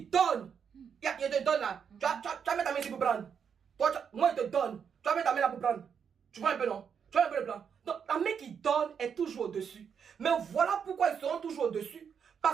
donne, il te donne là. Tu vas mettre ta main ici pour prendre. Moi, je te donne. Tu vas mettre ta main là pour prendre. Tu vois un peu, non? Tu vois un peu le plan? Donc, la main qui donne est toujours au-dessus. Mais voilà pourquoi ils seront toujours au-dessus.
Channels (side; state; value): left; quieter; 7.1 dB